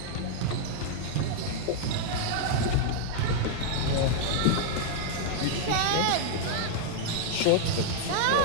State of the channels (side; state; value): both; different; correlation 0.00